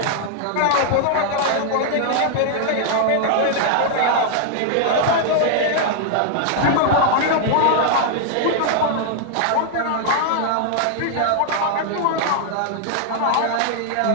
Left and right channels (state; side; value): different; both; correlation 0.00